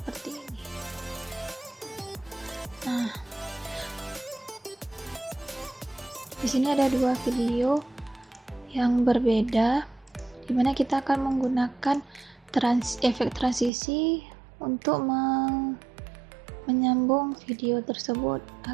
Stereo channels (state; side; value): drops out; left; at 13.7 s